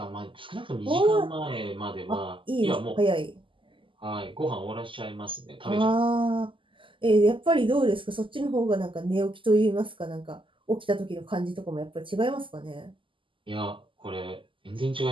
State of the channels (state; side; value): late; left; 0.25 ms